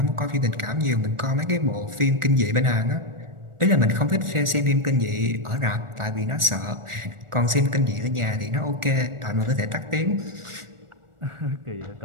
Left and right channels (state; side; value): late; left; 1.4 ms